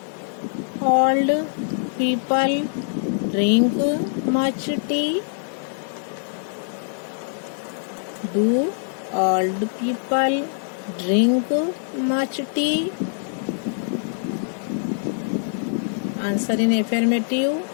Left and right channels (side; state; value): right; silent; 63 dB below the other